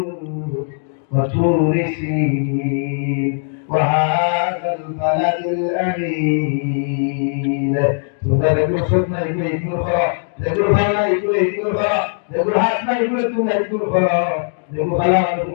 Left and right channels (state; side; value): silent; right; digital silence